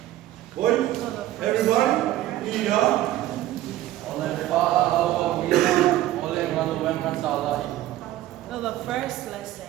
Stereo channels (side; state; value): left; quieter; 14.3 dB